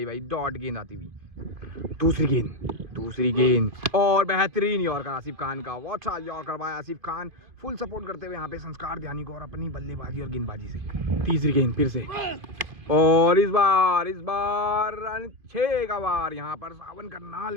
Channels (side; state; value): left; late; 2.5 ms